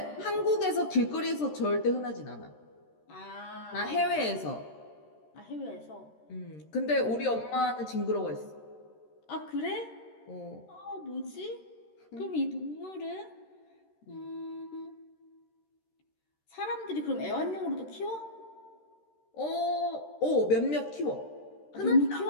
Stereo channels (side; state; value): right; late; 13 ms